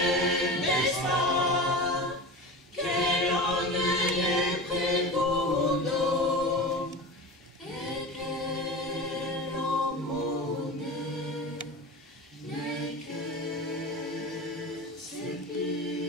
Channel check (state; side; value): normal; both; correlation 0.30